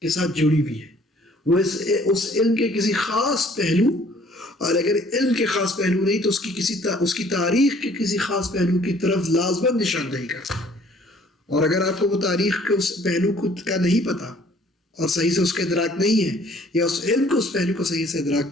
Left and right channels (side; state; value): both; normal; correlation 0.57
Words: کے ساتھ جڑی ہوئی ہے. وہ اس علم کے کسی خاص پہلو، اور اگر علم کے خاص پہلو نہیں تو اس کی تاریخ کے کسی خاص پہلو کی طرف لازماً نشاندہی کر سکتے. اور اگر آپ کو وہ تاریخ کے اس پہلو کا نہیں پتا اور صحیح سے اس کا ادراک نہیں ہے، یا اس علم کو اس پہلو کو صحیح سے